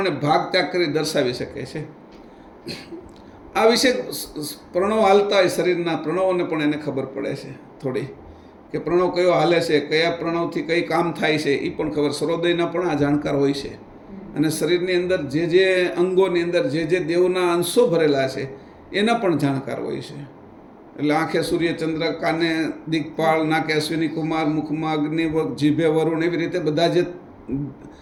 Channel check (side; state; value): both; identical; correlation 1.00